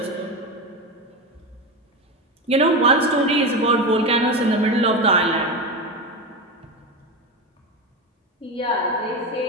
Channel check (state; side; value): normal; both; correlation 0.18